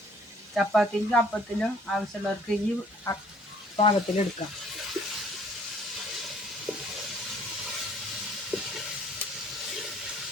ചപ്പാത്തിക്കും അപ്പത്തിനും ആവശ്യമുള്ളവർക്ക് ഈ പാകത്തിലെടുക്കാം.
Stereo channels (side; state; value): both; normal; correlation 0.58